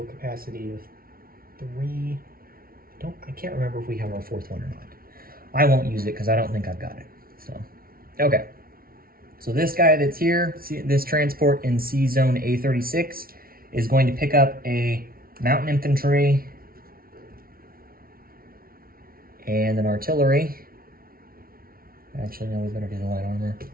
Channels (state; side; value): late; left; 0.43 ms